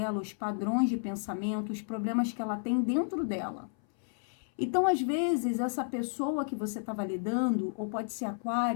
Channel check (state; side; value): silent; right; 57 dB below the other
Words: os padrões de pensamento, os problemas que ela tem dentro dela. Então, às vezes, essa pessoa que você estava lidando, ou pode ser